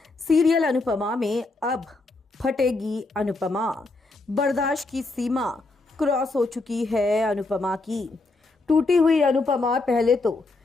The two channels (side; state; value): right; quieter; 3.3 dB